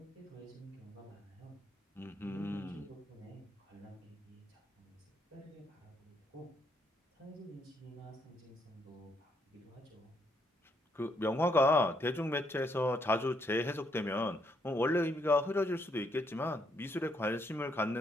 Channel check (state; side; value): normal; both; correlation 0.73